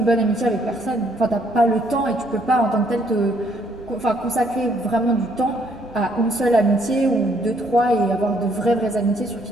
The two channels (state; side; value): normal; both; correlation 0.68